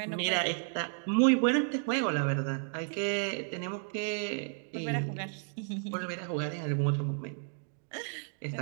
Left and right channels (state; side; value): silent; left; 56 dB below the other